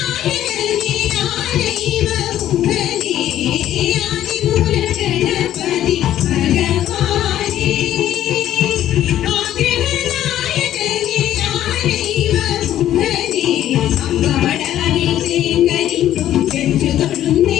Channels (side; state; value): right; quieter; 12.1 dB